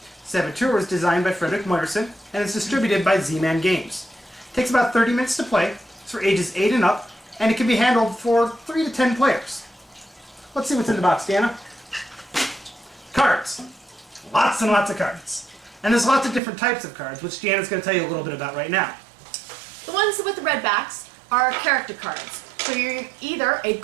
Saboteur was designed by Frederick Moyerson, and is distributed by Z-Man Games. It takes about 30 minutes to play, it's for ages 8 and up, and it can be handled for 3 to 10 players. Let's see what's in the box, Deanna. Cards. Lots and lots of cards. And there's lots of different types of cards, which Deanna's going to tell you a little bit about right now. The ones with the red backs are character cards. So you're either a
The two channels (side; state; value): left; drops out; at 16.4 s